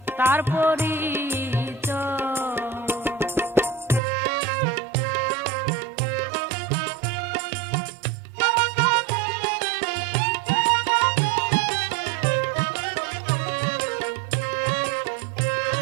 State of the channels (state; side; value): drops out; left; at 4.0 s